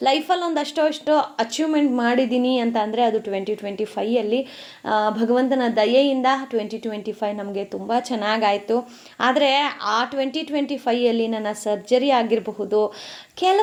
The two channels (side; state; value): both; identical; correlation 1.00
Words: ಲೈಫಲ್ಲಿ ಒಂದಷ್ಟೋ ಅಷ್ಟೋ ಅಚೀವ್ಮೆಂಟ್ ಮಾಡಿದ್ದೀನಿ ಅಂತ ಅಂದರೆ ಅದು 2025ಯಲ್ಲಿ ಭಗವಂತನ ದಯೆಯಿಂದ 2025 ನಮಗೆ ತುಂಬ ಚೆನ್ನಾಗಾಯಿತು. ಆದರೆ ಆ 2025ಯಲ್ಲಿ ನನ್ನ ಸರ್ಜರಿ ಆಗಿರಬಹುದು,